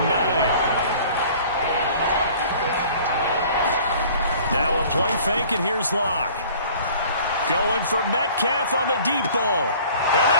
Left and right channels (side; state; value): both; inverted; correlation -0.50